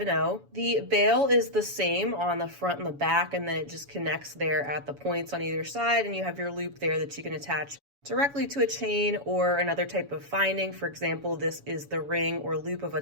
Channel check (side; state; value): left; late; 7.1 ms